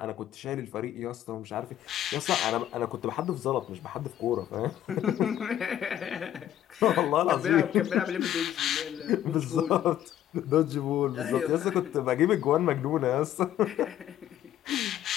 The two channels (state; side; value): quieter; right; 11.7 dB